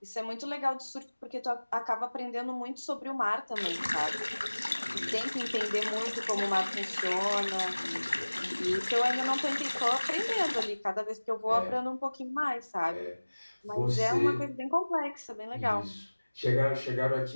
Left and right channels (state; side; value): inverted; both; correlation -1.00